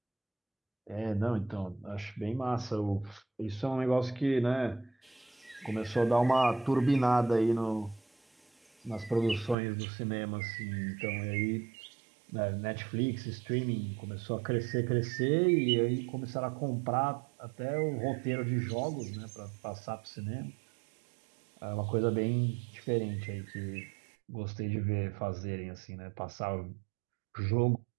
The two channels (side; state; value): left; drops out; at 9.6 s